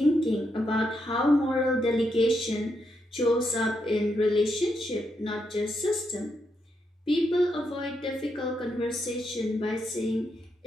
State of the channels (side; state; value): both; normal; correlation 0.81